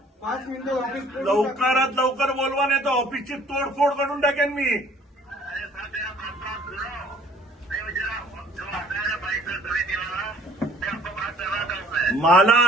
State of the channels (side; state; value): both; normal; correlation 0.55